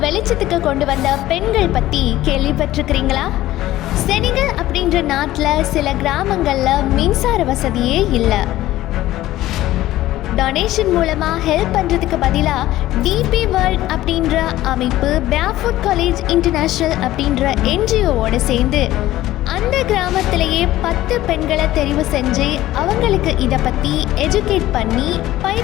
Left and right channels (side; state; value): right; quieter; 15.3 dB